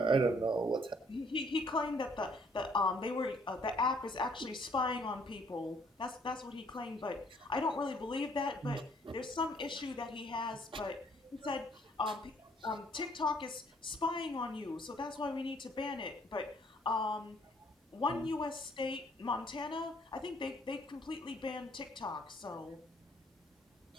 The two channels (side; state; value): both; normal; correlation 0.64